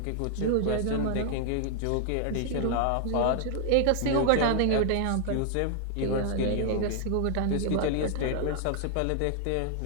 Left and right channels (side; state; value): both; different; correlation 0.00